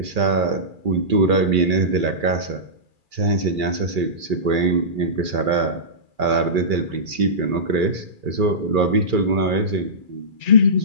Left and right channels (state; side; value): late; left; 2.4 ms